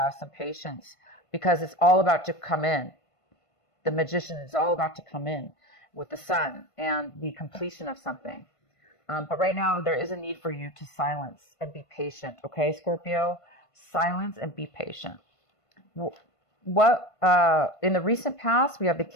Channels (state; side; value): late; right; 1.5 ms